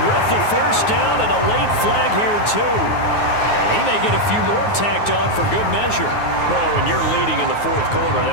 with the first down and a late flag here too. And he may get a few more tacked on for good measure. Well, when you're leading in the fourth quarter,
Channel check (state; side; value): late; right; 9.5 ms